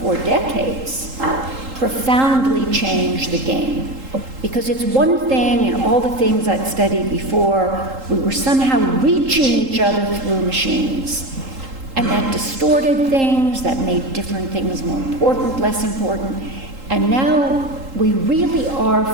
4 decades, profoundly change the game? Because it's one thing, and all the things I'd studied before, we were somehow reaching each other through machines. And that distorted things, that made different things more important, less important. And now we really are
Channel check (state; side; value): late; left; 3.8 ms